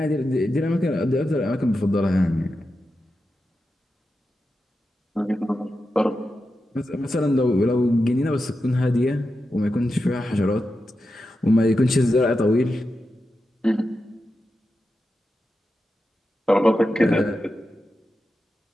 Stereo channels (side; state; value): both; normal; correlation 0.90